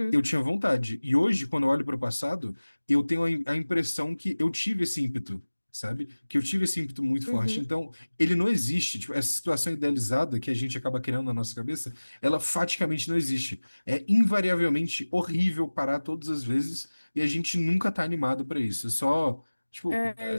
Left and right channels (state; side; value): inverted; both; correlation -1.00